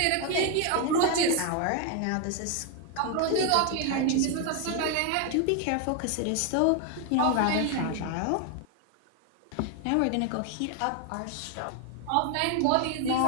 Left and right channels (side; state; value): both; different; correlation 0.01